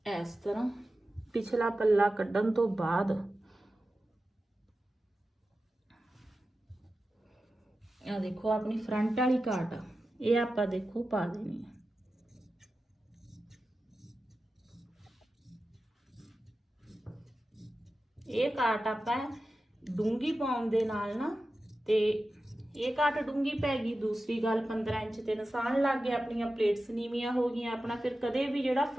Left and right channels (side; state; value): both; normal; correlation 0.93